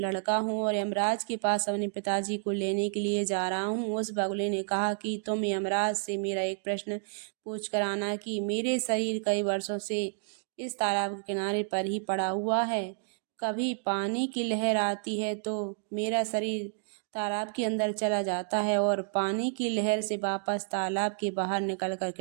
हूँ और यमराज के पास अपने पिताजी को लेने के लिए जा रहा हूँ। उस बगुले ने कहा कि तुम यमराज से मेरा एक प्रश्न पूछ कर आना कि मेरे शरीर कई वर्षों से इस तालाब के किनारे पर ही पड़ा हुआ है। कभी पानी की लहर आती है तो मेरा शरीर तालाब के अंदर चला जाता है और पानी की लहर से वापस तालाब के बाहर निकलकर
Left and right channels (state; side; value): silent; left; digital silence